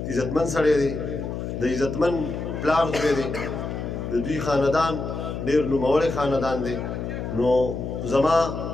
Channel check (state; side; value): noise; left; hum, 5 dB below the sound